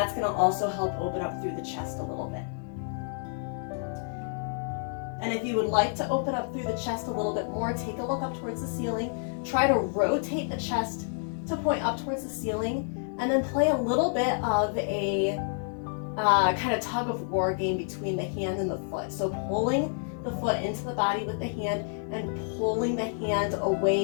going to also help open up through the chest a little bit. And if you would like to open up through the chest a little bit more, take a look up towards the ceiling. Try to rotate the chest to point up towards the ceiling, and then play a little bit of a kind of tug of war game between the hand and the foot. So pulling the foot into the body with the hand and pulling the hand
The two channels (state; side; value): silent; right; 59 dB below the other